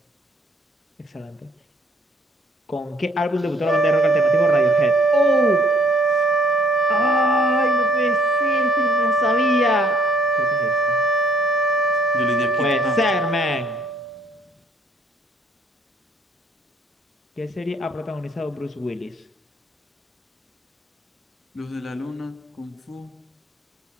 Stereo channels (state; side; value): normal; both; correlation 0.63